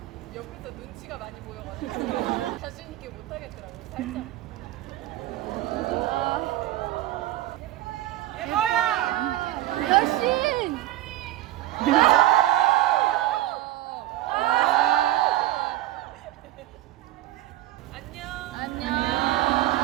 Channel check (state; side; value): quieter; left; 14.7 dB